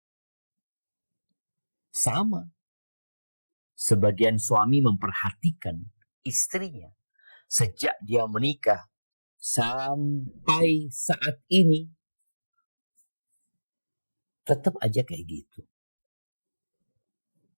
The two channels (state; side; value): inverted; both; correlation -1.00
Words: Sama. Sebagian suami memperhatikan istrinya sejak dia menikah sampai saat ini tetap aja kayak gitu.